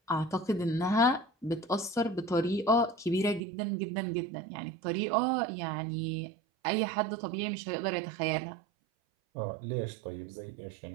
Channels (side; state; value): left; drops out; at 3.4 s